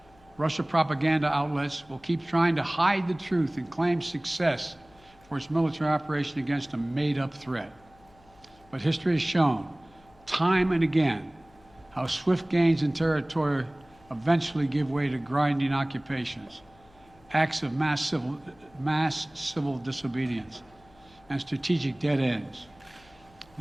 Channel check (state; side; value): noise; left; hum, 28 dB below the sound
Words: Russia propaganda outlets will keep trying to hide the truth and claim success for its military operation against a made-up threat. But history has shown, time and again, how swift gains in territory eventually give way to grinding occupations, acts of mass civil disobedience, and strategic dead ends.